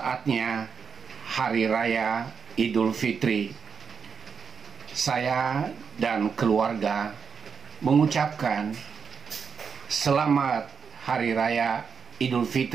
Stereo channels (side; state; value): left; quieter; 6.1 dB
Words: Hari Raya Idul Fitri. Saya dan keluarga mengucapkan selamat Hari Raya Idul